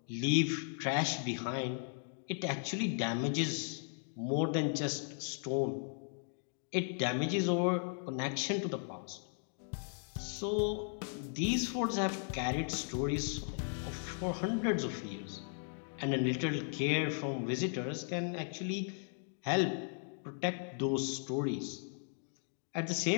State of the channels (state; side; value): silent; right; 53 dB below the other